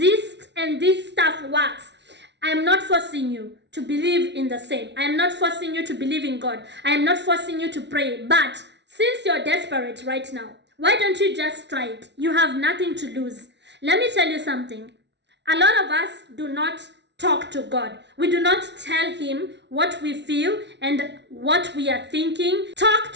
and this stuff works. I am not forcing you to believe in the same. I am not forcing you to believe in God. I am not forcing you to pray. But since you're desperate right now, why don't you just try it? You have nothing to lose. Let me tell you something. A lot of us do not talk to God. We do not tell Him what we feel and what we are thinking. Talk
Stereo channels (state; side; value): late; left; 0.51 ms